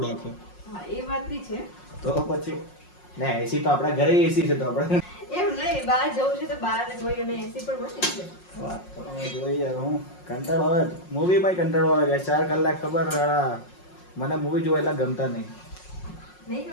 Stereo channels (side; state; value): right; late; 5.5 ms